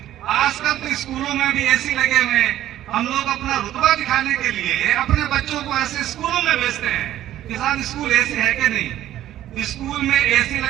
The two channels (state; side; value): quieter; left; 12.9 dB